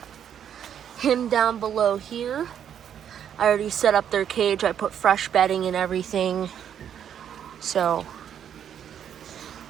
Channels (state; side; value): quieter; left; 9.1 dB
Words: him down below here. I already set up their cage. I put fresh bedding and everything. So